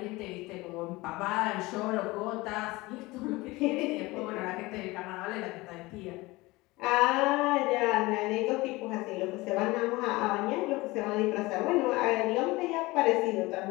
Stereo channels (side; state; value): right; quieter; 21.4 dB